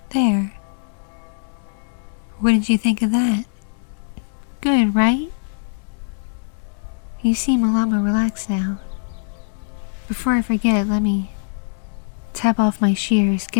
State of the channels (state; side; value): silent; right; 63 dB below the other